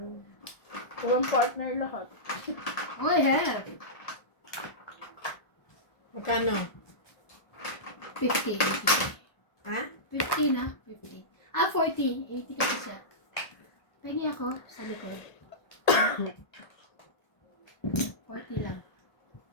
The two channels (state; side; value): late; right; 1.7 ms